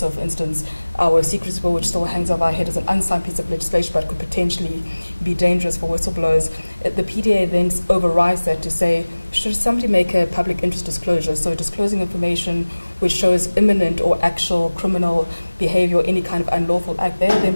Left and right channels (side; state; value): both; inverted; correlation -1.00